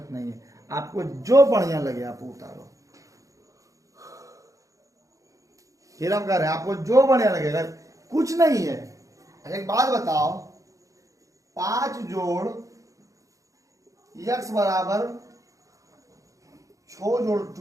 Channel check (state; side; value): late; left; 0.16 ms